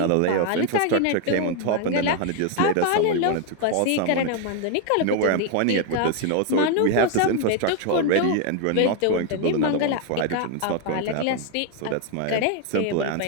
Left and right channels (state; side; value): different; both; correlation 0.01